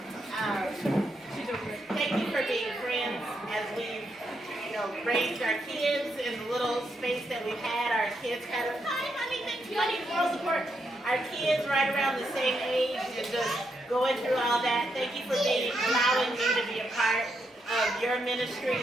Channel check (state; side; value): normal; both; correlation 0.81